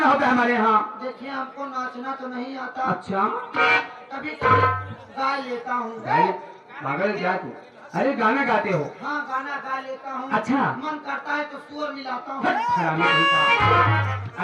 होगा हमारे यहाँ देखिए हमको नाचना तो नहीं आता अच्छा कभी गा लेता हूँ पागल क्या तू अरे गाना गाते हो हाँ गाना गा लेता हूँ अच्छा मन करता है तो स्वर मिलाता हूँ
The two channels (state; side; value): identical; both; correlation 1.00